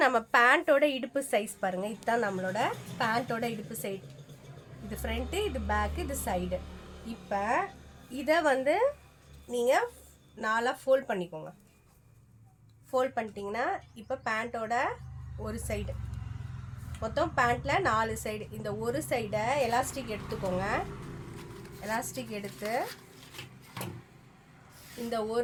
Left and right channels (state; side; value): identical; both; correlation 1.00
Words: நம்ம பேண்ட்டோட இடுப்பு சைஸ் பாருங்கள். இதுதான் நம்மளோட பேண்ட்டோட இடுப்பு சைடு. இது ஃப்ரண்ட்டு, இது பேக்கு, இது சைடு. இப்போ இதை வந்து நீங்கள் 4 ஃபோல்ட் பண்ணிக்கோங்க. ஃபோல்ட் பண்ணிட்டீங்கன்னா இப்போ பேண்ட்டோட ஒரு சைடு, மொத்தம் பேண்ட்டில் 4 சைடு. இந்த ஒரு சைடை எலாஸ்டிக் எடுத்துக்கோங்க. எலாஸ்டிக் எடுத்து இந்த